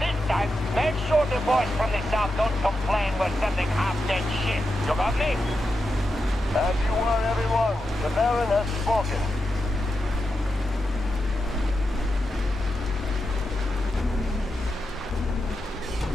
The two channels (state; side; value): normal; both; correlation 0.88